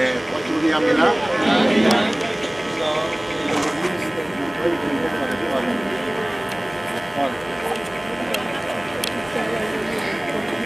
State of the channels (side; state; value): right; noise; hum, 25 dB below the sound